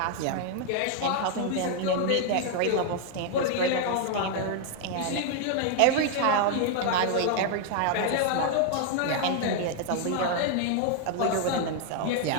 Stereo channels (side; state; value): both; different; correlation 0.00